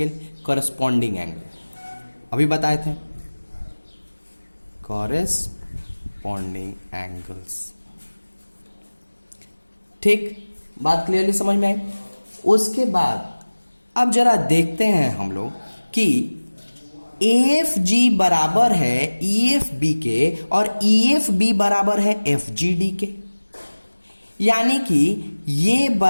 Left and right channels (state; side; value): inverted; both; correlation -1.00